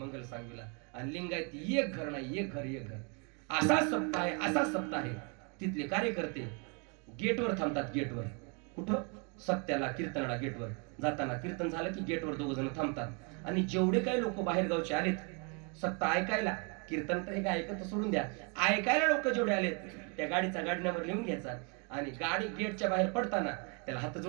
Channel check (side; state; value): left; quieter; 34.9 dB